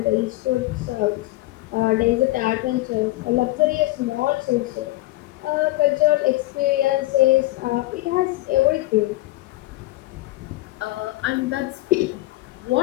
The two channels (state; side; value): quieter; right; 18.4 dB